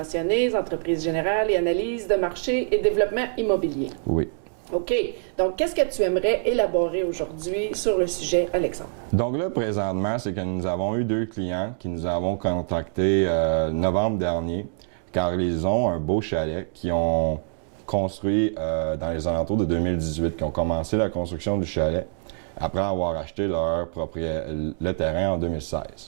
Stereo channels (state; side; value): silent; left; digital silence